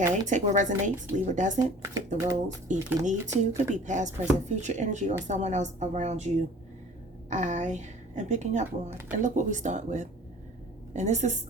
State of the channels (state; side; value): normal; both; correlation 0.47